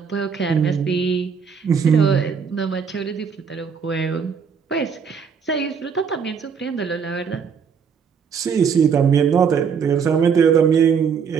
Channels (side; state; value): left; quieter; 6.5 dB